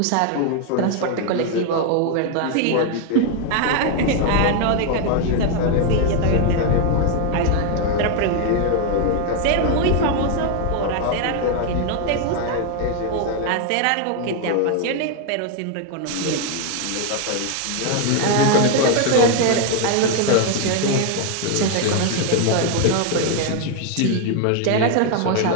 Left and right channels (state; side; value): different; both; correlation 0.01